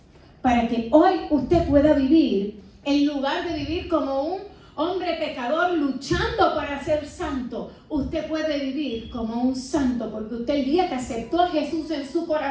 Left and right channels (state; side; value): identical; both; correlation 1.00